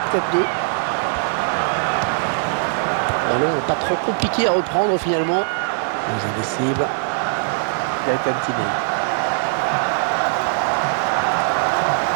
Ballon pas trop compliqué à reprendre finalement. Les indécibles. Gaëtan Tiné.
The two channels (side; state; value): left; silent; 63 dB below the other